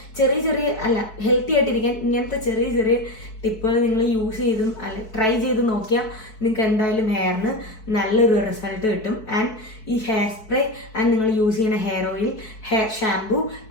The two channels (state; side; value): late; right; 4.6 ms